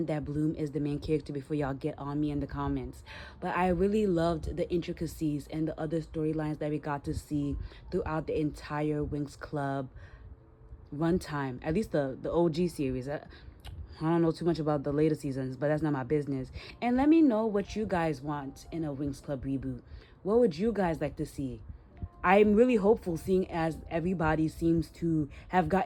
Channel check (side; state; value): both; identical; correlation 1.00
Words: that Bloom is the main character before y'all get on me in the comments, but I really loved the intricacies and the other storylines that we got to see throughout the entire Winx Club runtime, at least the OG series. I don't know too much about the later seasons, but that's not my business. And let me know what you guys want in a Winx Club reboot. What would you guys like to see? I'm really hopeful, seeing as everybody seems to have